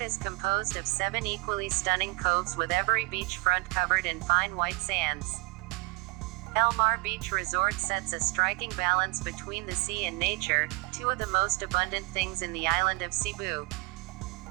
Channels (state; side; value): quieter; left; 27.0 dB